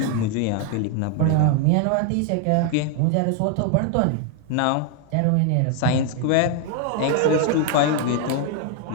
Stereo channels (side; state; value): both; different; correlation 0.00